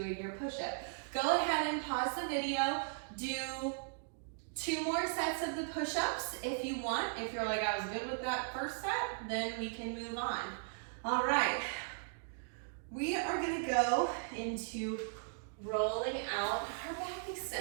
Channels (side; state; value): left; silent; digital silence